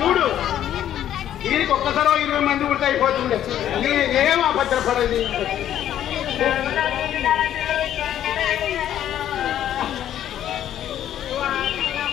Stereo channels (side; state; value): right; quieter; 11.2 dB